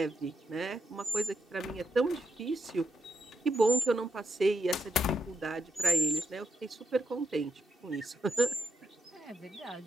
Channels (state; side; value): normal; both; correlation 0.81